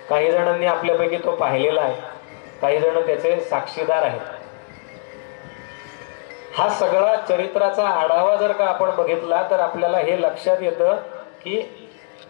काही जणांनी आपल्यापैकी तो पाहिलेला आहे, काही जण त्याचे साक्षीदार आहेत. हा सगळा चरित्राचा आढावा जर का आपण बघितला तर आपल्याला हे लक्षात येतं की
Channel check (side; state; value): right; silent; 65 dB below the other